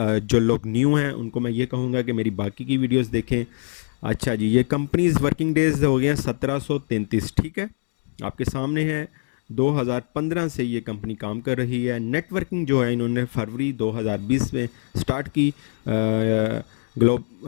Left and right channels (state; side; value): silent; right; digital silence